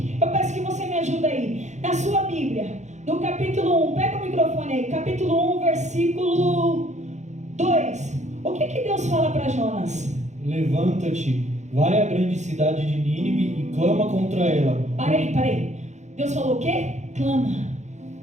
Eu peço que você me ajude aí. Na sua Bíblia, no capítulo 1, pega o microfone aí. Capítulo 1, versículo 2. O que Deus fala para Jonas? Levanta-te, vai à grande cidade de Nínive e clama contra ela. Parei. Deus falou o quê? Clama.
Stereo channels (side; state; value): left; late; 0.34 ms